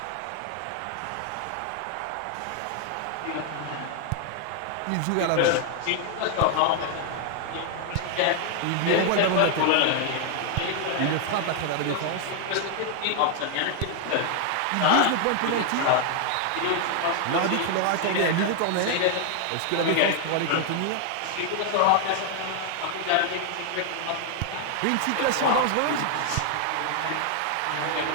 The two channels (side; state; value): both; different; correlation 0.00